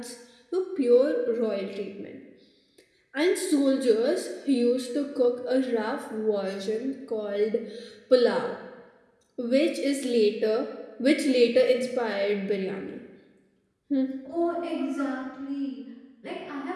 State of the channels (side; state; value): both; identical; correlation 1.00